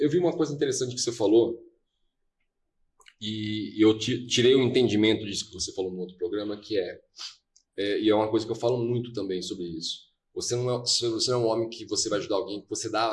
vi uma coisa interessante que você falou e eu tirei o entendimento disso que você falou no outro programa, que e é uma coisa que eu falo muito também sobre isso. Você não é um homem que você vai ajudar alguém, que você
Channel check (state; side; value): identical; both; correlation 1.00